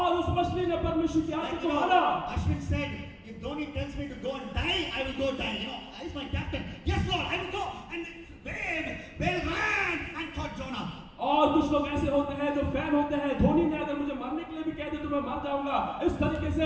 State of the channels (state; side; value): identical; both; correlation 1.00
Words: उस मछली ने परमेश्वर की आज्ञा Like, को माना। Ashwin said, if Dhoni tells me to go and die, I will go die. You know, he's my captain. Yes Lord, I will go. And whale ran and caught Jonah. और कुछ लोग ऐसे होते हैं जो fan होते हैं, धोनी ने अगर मुझे मरने के लिए भी कह दे तो मैं मर जाऊंगा। इस तरीके